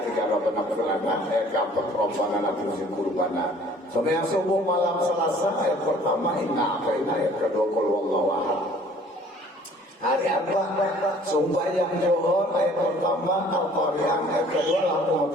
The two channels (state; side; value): normal; both; correlation 0.53